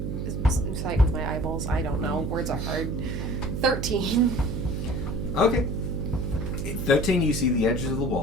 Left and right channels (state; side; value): noise; right; hum, 3 dB below the sound